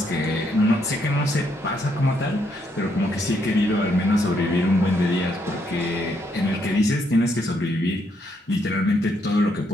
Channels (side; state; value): both; normal; correlation 0.74